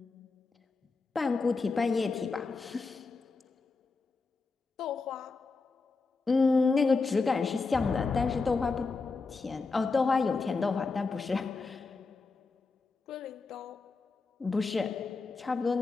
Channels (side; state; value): right; quieter; 4.1 dB